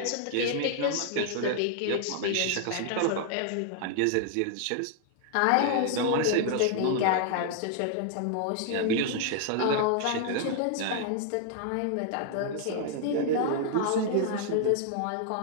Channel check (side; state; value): both; different; correlation 0.00